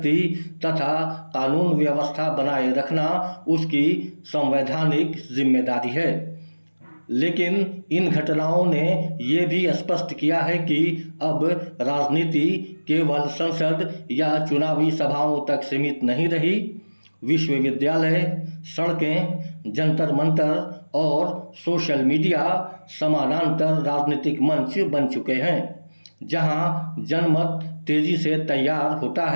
तथा कानून व्यवस्था बनाए रखना उसकी संवैधानिक जिम्मेदारी है। लेकिन इन घटनाओं ने ये भी स्पष्ट किया है कि अब राजनीति केवल संसद या चुनावी सभाओं तक सीमित नहीं रही। विश्वविद्यालय, सड़कें, जंतर मंतर और सोशल मीडिया समानांतर राजनीतिक मंच बन चुके हैं। जहां जनमत तेजी से तैयार होता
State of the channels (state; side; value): inverted; both; correlation -1.00